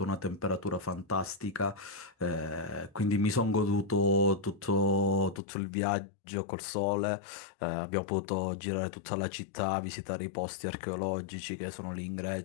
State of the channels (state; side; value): drops out; right; at 5.4 s